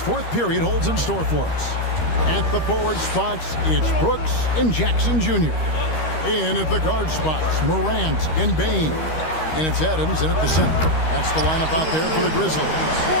period holds in store for us. At the forward spots, it's Brooks and Jackson Jr. In at the guard spots, Morant and Bane. And it's Adams in at the center. That's the lineup out there for the Grizzlies.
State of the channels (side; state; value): right; late; 13 ms